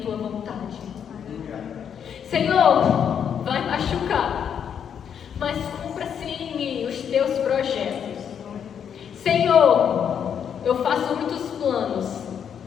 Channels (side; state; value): right; quieter; 8.1 dB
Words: tua vontade. Senhor, vai machucar, mas cumpra-se em mim os teus projetos. Senhor, eu faço muitos planos,